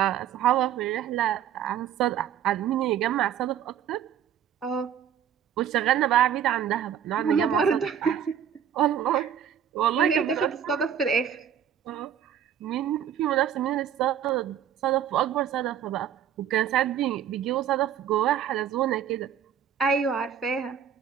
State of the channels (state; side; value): quieter; left; 9.2 dB